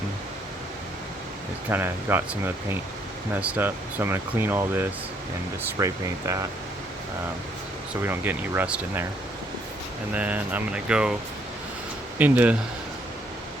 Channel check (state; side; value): normal; both; correlation 0.69